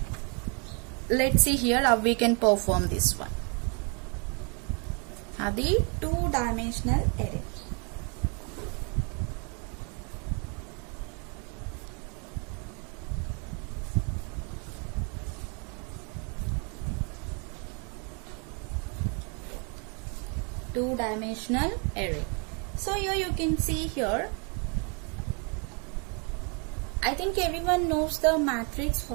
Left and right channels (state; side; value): quieter; left; 35.7 dB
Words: Let's see here how we can perform this one. The two dimensional array. Two-dimensional array. So here you can see here, I think everyone knows the matrix